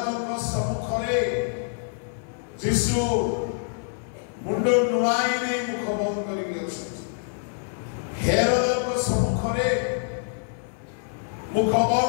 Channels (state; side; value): silent; right; 57 dB below the other